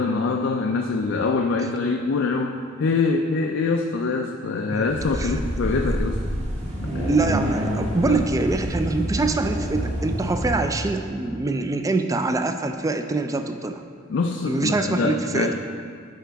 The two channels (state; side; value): normal; both; correlation 0.54